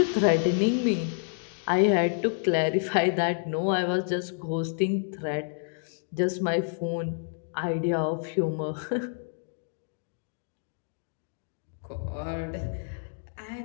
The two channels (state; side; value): silent; right; digital silence